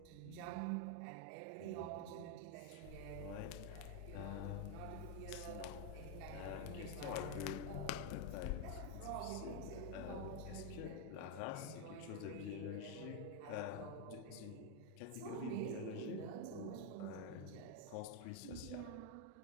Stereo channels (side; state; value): both; different; correlation 0.01